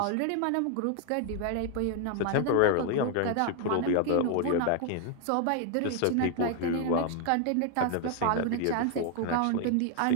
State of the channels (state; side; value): different; both; correlation 0.00